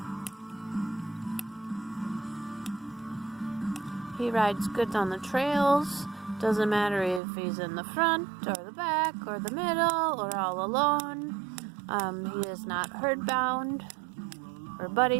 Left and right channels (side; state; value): left; drops out; at 7.2 s